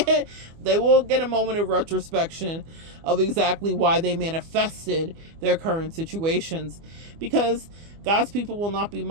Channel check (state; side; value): late; left; 24 ms